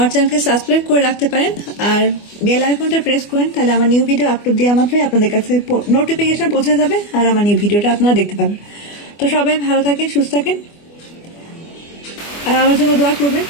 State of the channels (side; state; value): right; late; 24 ms